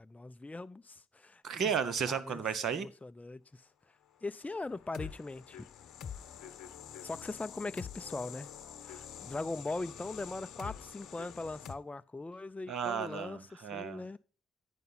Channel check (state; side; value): normal; both; correlation 0.61